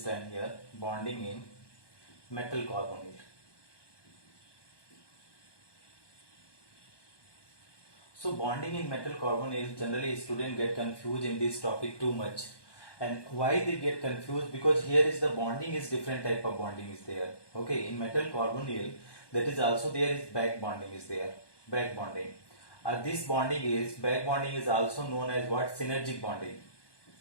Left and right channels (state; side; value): late; right; 1.2 ms